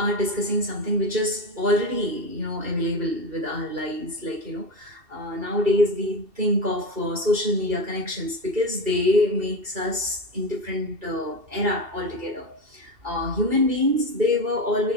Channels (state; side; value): late; left; 2.7 ms